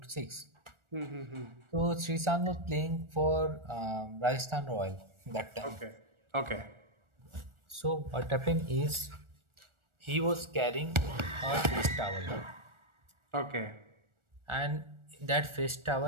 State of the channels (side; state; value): left; late; 1.4 ms